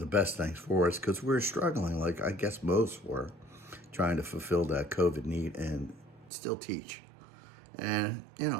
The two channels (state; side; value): drops out; left; at 6.3 s